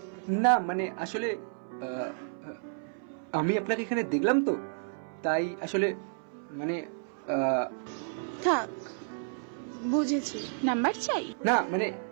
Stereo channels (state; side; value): silent; left; 57 dB below the other